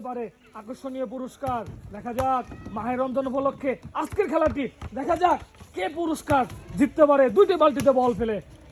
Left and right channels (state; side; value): identical; both; correlation 1.00